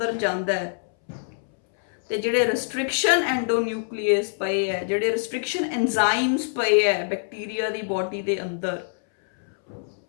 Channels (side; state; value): right; silent; 62 dB below the other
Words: ਜਾਂਦਾ ਹੈ ਤੇ ਜਿਹੜੇ ਰਿਸਟ੍ਰਿਕਸ਼ਨ ਐਂਡੋਨਿਊਕਲੀਏਸ ਪਏ ਹੈ, ਜਿਹੜੇ ਰਿਸਟ੍ਰਿਕਸ਼ਨ ਐਂਜ਼ਾਈਮਸ ਪਏ ਹੈ ਬੈਕਟੀਰੀਆ ਦੀ ਬੋਡੀ ਦੇ ਅੰਦਰ,